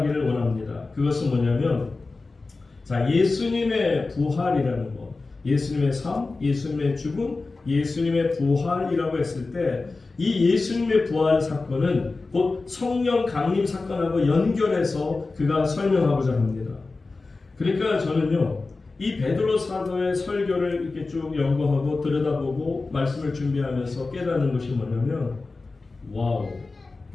원합니다. 그것은 뭐냐면, 자, 예수님의 부활이라는 것, 예수님의 삶, 예수님의 죽음, 예수님의 부활이라고 했을 때 이 예수님의 부활 사건은 곧 성령 강림 사건하고 연결해서 그가 설명하고자 합니다. 그러니까 저는요, 이 베드로 사도의 설교를 이렇게 쭉 연구하고 들여다보고 말씀을 준비하면서 깨닫는 것이 뭐냐면, 와우,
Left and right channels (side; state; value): right; quieter; 3.7 dB